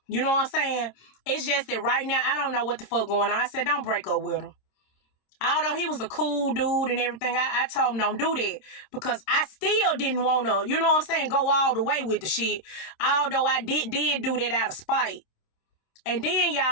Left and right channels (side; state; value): right; late; 26 ms